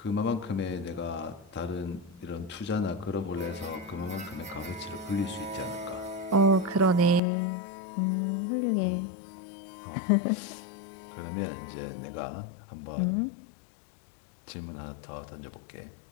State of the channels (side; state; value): right; drops out; at 7.2 s